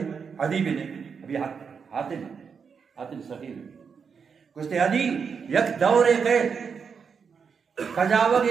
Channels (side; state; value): left; quieter; 6.1 dB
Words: عدی بن ابھی حاتم سخیر کچھ عدی یک دور قید کجاوہ